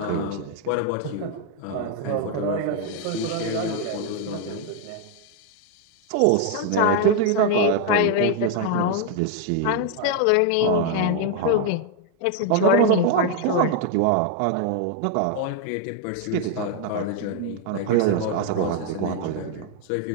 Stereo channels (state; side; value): different; both; correlation 0.01